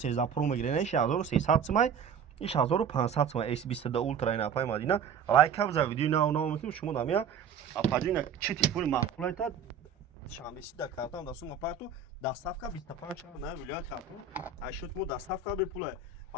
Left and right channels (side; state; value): left; quieter; 6.6 dB